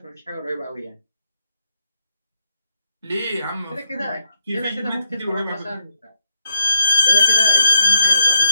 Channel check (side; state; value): both; inverted; correlation -0.80